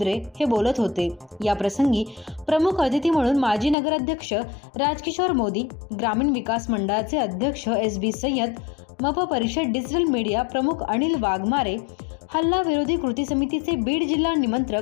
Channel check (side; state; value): right; drops out; at 3.8 s